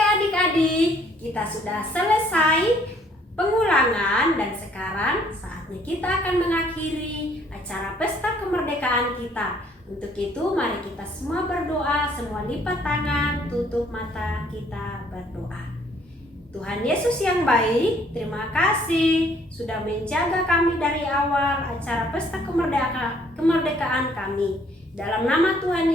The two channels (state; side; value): normal; both; correlation 0.62